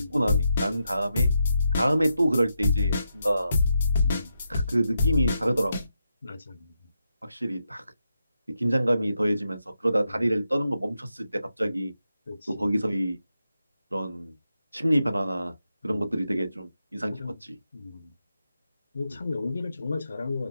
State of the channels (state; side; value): inverted; both; correlation -0.85